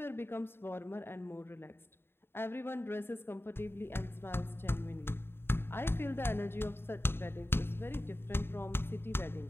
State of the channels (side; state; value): right; late; 0.11 ms